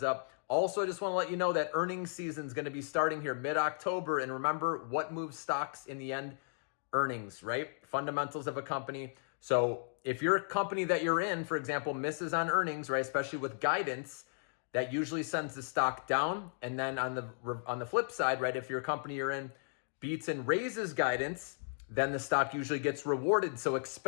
up. Also, I just want to let you know that earnings season is going to be starting here mid-October. And remember, what moves stocks in the end? Earnings, right? Fundamentals of a company. So if your company that you're in, for example, misses on earnings, right, especially with guidance, that usually sends the stock down. And then on the flip side, right, if your company you're in beats and raises guidance, then the stock usually gets rewarded. So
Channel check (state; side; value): silent; right; digital silence